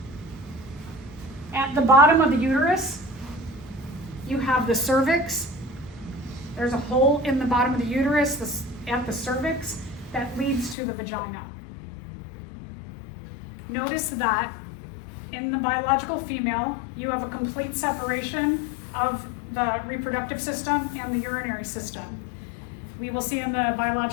At the bottom of the uterus, you have the cervix. There's a hole in the bottom of the uterus at the cervix that leads to the vagina. Notice that in the biological female, you have a complete separation of the reproductive system and the urinary system. We will see in the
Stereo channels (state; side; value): drops out; right; at 10.8 s